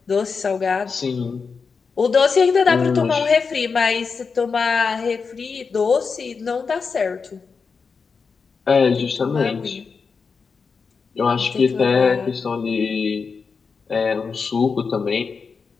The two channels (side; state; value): right; quieter; 5.2 dB